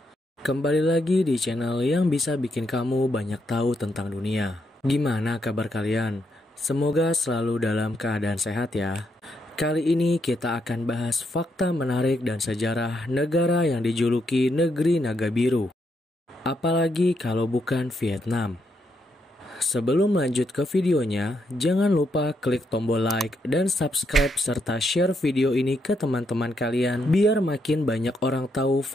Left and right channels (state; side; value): normal; both; correlation 0.79